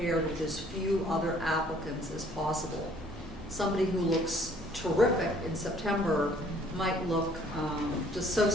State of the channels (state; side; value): normal; both; correlation 0.59